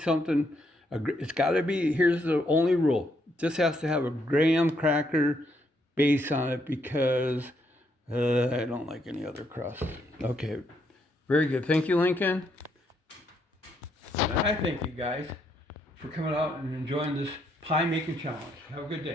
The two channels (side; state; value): both; normal; correlation 0.74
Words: It's got to be, here's the only rule. It just has to have a graham cracker base on it because I don't like any other crust. Okay, very good. Thank you, Lincoln. And I thank you guys for coming out and enjoying this pie making challenge. Have a good